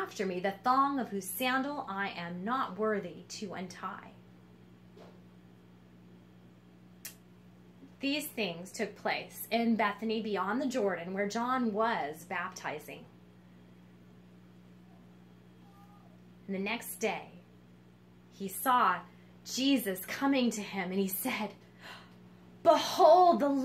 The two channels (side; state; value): both; identical; correlation 1.00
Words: me, the thong of whose sandal I am not worthy to untie. These things took place in Bethany beyond the Jordan, where John was baptizing. And the next day, he saw Jesus coming to him, and he said, Behold the